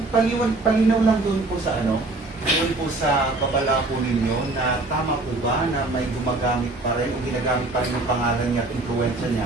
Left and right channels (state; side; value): quieter; left; 3.1 dB